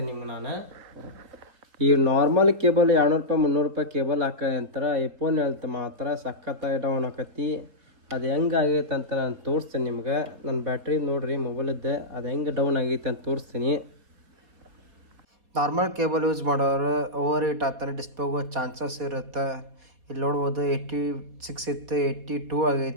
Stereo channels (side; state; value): left; late; 4.2 ms